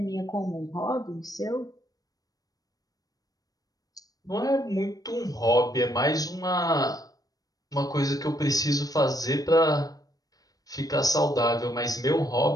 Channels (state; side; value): late; right; 0.18 ms